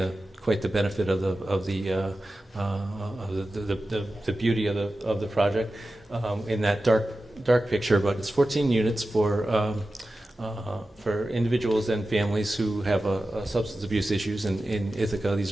quite the benefit of the beauty of the project in that dark picture. But it's 14 units for individuals and families who have substance abuse issues in Ithaca. These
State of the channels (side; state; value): both; normal; correlation 0.94